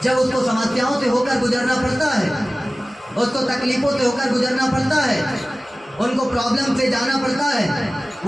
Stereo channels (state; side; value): normal; both; correlation 0.97